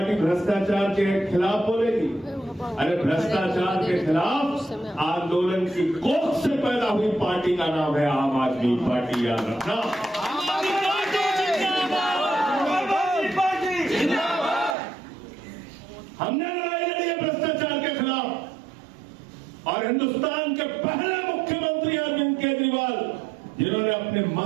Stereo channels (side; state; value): left; drops out; at 14.8 s